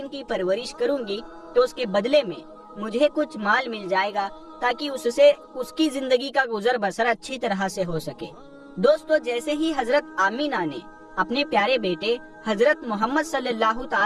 کی پرورش کروں گی تو اس کے بدلے میں مجھے کچھ مال مل جائے گا تاکہ اس سے اس کی زندگی کا گزر بسر اچھی طرح سے ہو سکے۔ دوستو جیسے ہی حضرت آمینہ نے اپنے پیارے بیٹے حضرت محمد صلی اللہ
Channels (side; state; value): both; identical; correlation 1.00